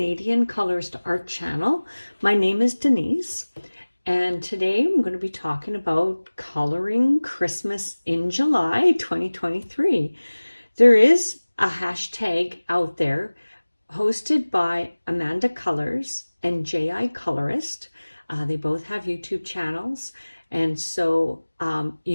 Colorist Art Channel. My name is Denise, and today I'm going to be talking about coloring Christmas in July 2023. There is a hashtag out there hosted by Amanda Colors and J.I. Colorist. They both have YouTube channels, and so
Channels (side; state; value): both; inverted; correlation -1.00